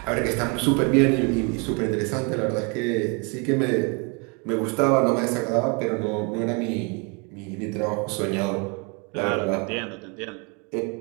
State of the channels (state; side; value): quieter; left; 32.0 dB